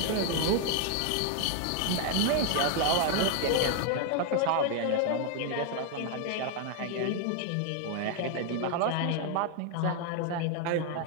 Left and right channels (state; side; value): different; both; correlation 0.00